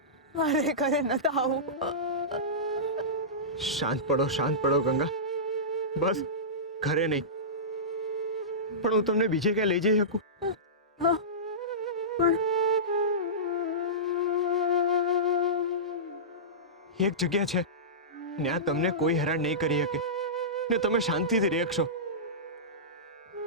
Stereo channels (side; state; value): both; normal; correlation -0.19